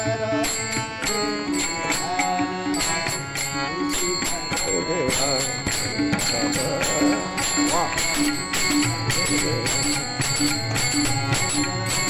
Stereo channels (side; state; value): both; identical; correlation 1.00